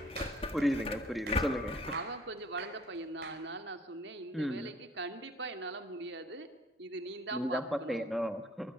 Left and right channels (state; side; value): normal; both; correlation 0.57